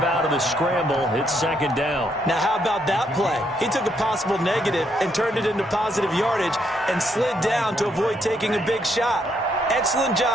out of the scramble. It's second down. Now, how about that play? He took a possible negative and turned it into positive yardage and slid down to avoid taking a big shot. Excellent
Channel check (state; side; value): normal; both; correlation 0.74